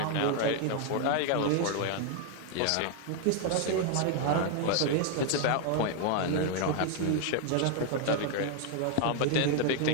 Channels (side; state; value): both; different; correlation 0.00